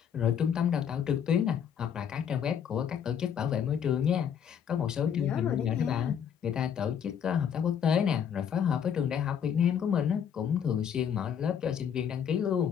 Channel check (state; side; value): quieter; right; 8.2 dB